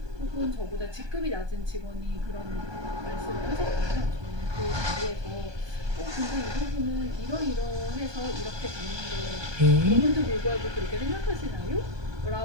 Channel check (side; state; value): left; late; 1.2 ms